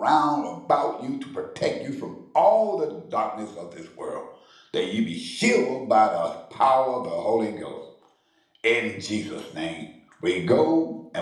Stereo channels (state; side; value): identical; both; correlation 1.00